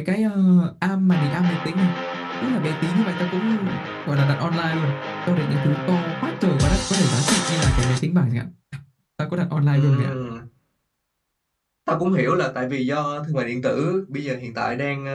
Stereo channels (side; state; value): both; identical; correlation 1.00